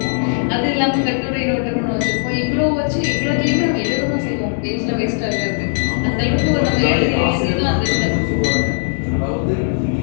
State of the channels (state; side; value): silent; right; digital silence